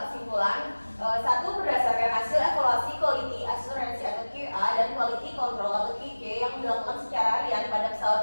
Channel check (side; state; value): both; inverted; correlation -1.00